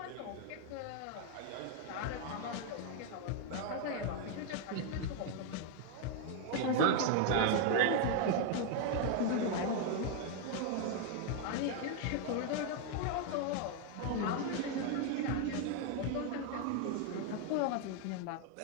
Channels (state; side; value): different; both; correlation 0.01